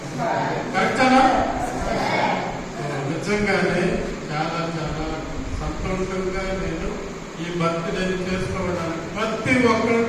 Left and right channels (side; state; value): both; identical; correlation 1.00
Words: కరెక్టేనా? నిజంగానే చాలా చాలా సంతోషంగా నేను ఈ బర్త్డే చేసుకోవడానికి ప్రతి ఒక్కరు